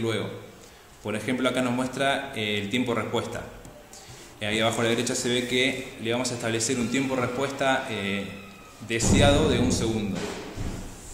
Por ejemplo, acá nos muestra el tiempo de respuesta. Ahí abajo a la derecha se ve que le vamos a establecer un tiempo de respuesta deseado de 1 segundo.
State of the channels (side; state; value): both; identical; correlation 1.00